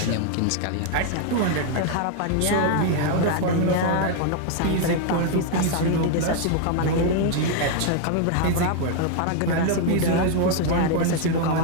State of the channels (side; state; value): both; different; correlation 0.00